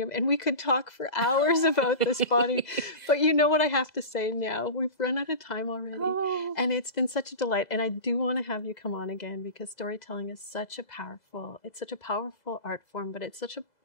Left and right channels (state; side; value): late; right; 2.0 ms